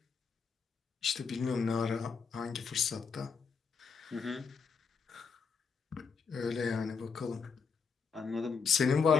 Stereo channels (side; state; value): right; quieter; 5.6 dB